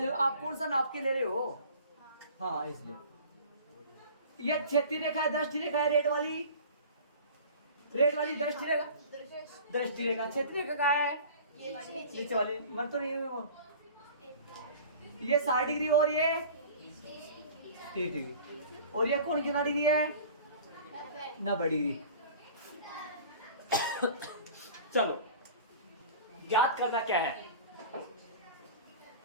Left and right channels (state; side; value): inverted; both; correlation -0.42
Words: लो, आप कौन सा नाप के ले रहे हो। हाँ इसलिए ये क्षैतिज रेखा है, दृष्टि रेखा है, रेड वाली दृष्टि रेखा, दृष्टि रेखा। क्षैतिज रेखा कहाँ है, नीचे वाली, मन तो नहीं है वो। ये 60 डिग्री और ये 30 डिग्री, और ये कौन कितना डिग्री है, 90 डिग्री। चलो याद करना क्या है,